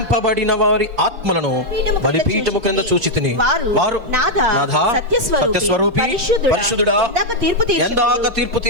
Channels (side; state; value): left; late; 4.4 ms